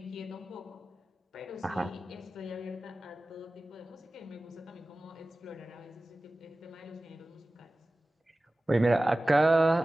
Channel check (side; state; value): both; normal; correlation 0.97